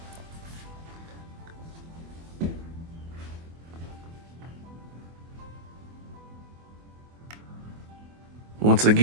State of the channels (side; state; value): left; late; 24 ms